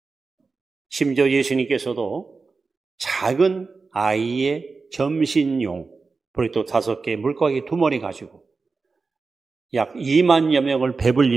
심지어 예수님께서도 작은 아이의 점신용 보리떡 5개, 물고기 2마리 가지고 약 2만여 명을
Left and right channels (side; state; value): left; quieter; 4.3 dB